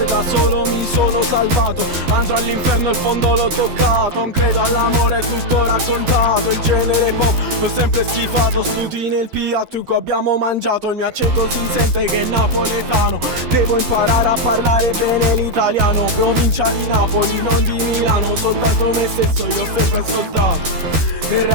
da solo mi sono salvato. Andrò all'inferno, il fondo l'ho toccato. Non credo all'amore, è tutto raccontato. Il genere pop l'ho sempre schifato. Sputi nel piatto, abbiamo mangiato. Il mio accento si sente che è napoletano. Devo imparare a parlare bene l'italiano. Provincia di Napoli, non di Milano. Soltanto me stesso, io ho sempre ascoltato. Il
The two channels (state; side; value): late; left; 13 ms